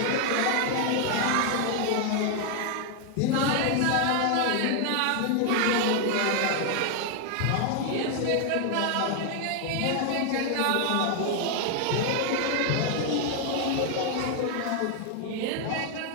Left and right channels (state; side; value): different; both; correlation 0.00